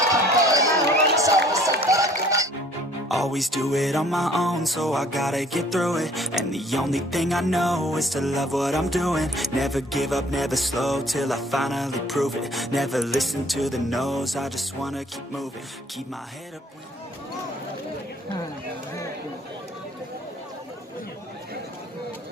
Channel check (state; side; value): normal; both; correlation 0.55